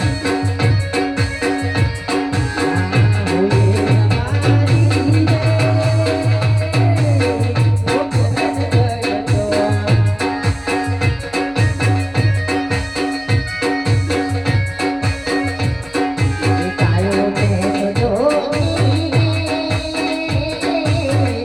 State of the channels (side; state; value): left; noise; hum, 26 dB below the sound